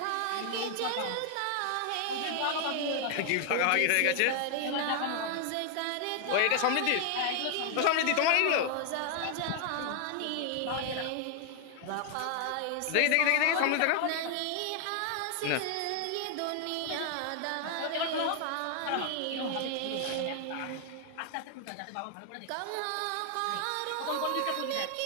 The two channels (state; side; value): different; both; correlation 0.00